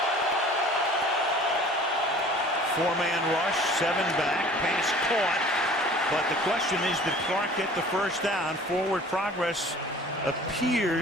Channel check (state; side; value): normal; both; correlation 0.47